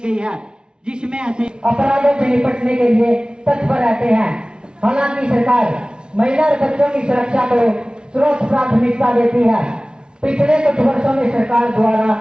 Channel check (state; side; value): late; left; 0.054 ms